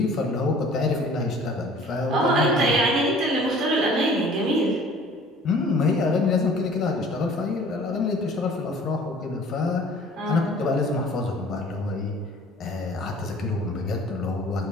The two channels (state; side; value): normal; both; correlation 0.49